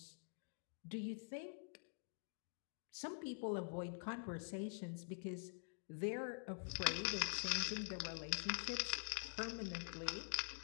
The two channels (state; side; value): silent; right; digital silence